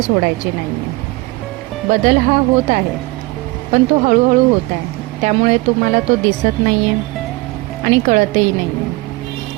नाही आहे. बदल हा होत आहे, पण तो हळूहळू होत आहे. त्यामुळे तुम्हाला तो दिसत नाही आहे आणि कळतही नाही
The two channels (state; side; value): quieter; left; 22.2 dB